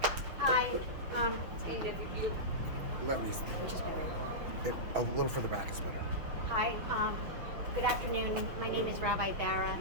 Hi, Let me. which is better? A little further back is better. Hi, good afternoon. My name is Rabbi Bara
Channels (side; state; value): left; late; 6.1 ms